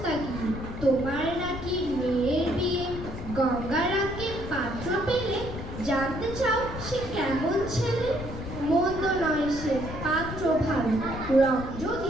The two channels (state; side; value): noise; left; rumble, 9 dB below the sound